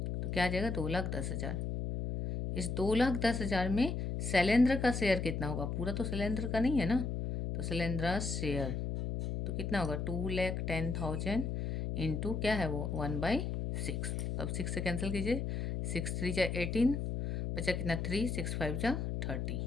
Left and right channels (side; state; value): left; noise; hum, 2 dB below the sound